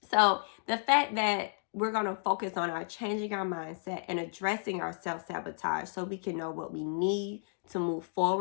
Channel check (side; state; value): right; silent; digital silence